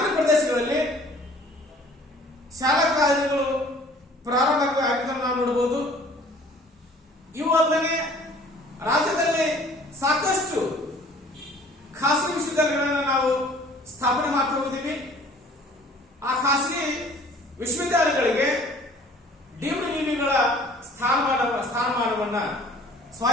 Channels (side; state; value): both; normal; correlation 0.52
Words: ಪ್ರದೇಶಗಳಲ್ಲಿ ಶಾಲಾ ಕಾಲೇಜುಗಳು ಪ್ರಾರಂಭ ಆಗಿದ್ದನ್ನು ನಾವು ನೋಡಬಹುದು. ಇವು ಅಲ್ಲದೆ ರಾಜ್ಯದಲ್ಲಿ ಸಾಕಷ್ಟು ಖಾಸಗಿ ವಿಶ್ವವಿದ್ಯಾಲಯಗಳನ್ನು ನಾವು ಸ್ಥಾಪನೆ ಮಾಡ್ತಾ ಹೋಗಿದ್ದೀವಿ. ಆ ಖಾಸಗಿ ವಿಶ್ವವಿದ್ಯಾಲಯಗಳಿಗೆ ಡೀಮ್ಡ್ ಯುನಿಗಳ ಸ್ಥಾನಮಾನವನ್ನ